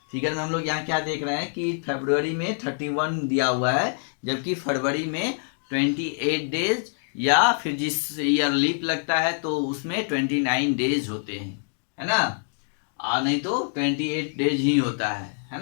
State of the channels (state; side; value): silent; right; digital silence